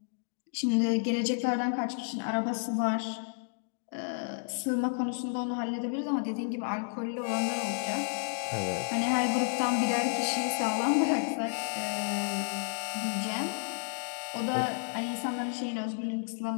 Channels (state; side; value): silent; right; digital silence